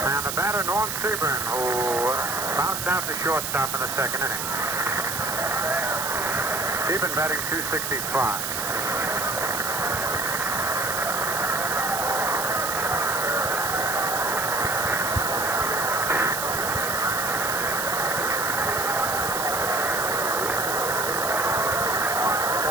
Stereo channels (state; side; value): noise; right; hiss, 3 dB below the sound